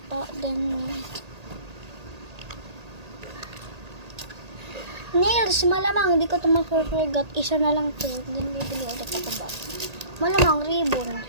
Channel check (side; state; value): left; late; 1.8 ms